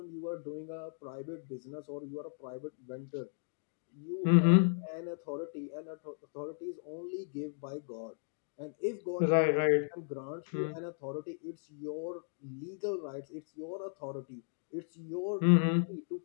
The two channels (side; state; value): right; silent; digital silence